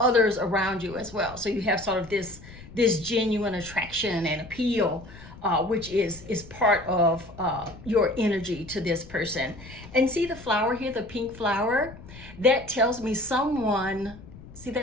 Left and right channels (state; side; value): noise; left; rumble, 17 dB below the sound